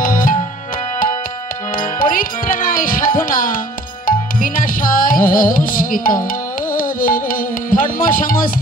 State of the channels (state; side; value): normal; both; correlation 0.52